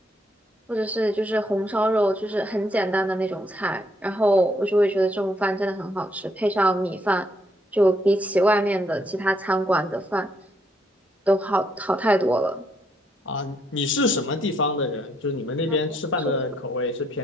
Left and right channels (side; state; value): both; normal; correlation 0.72